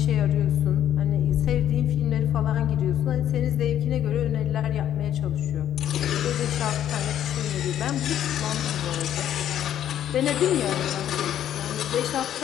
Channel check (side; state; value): right; quieter; 10.8 dB